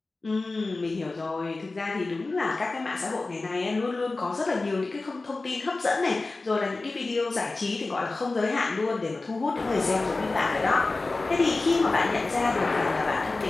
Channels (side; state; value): right; quieter; 3.4 dB